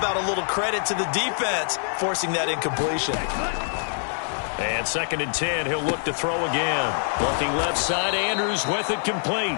a little credit to the defense forcing that incompletion? And 2nd and 10, he'll look to throw again. Looking left side, Andrews with it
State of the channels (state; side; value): silent; right; 62 dB below the other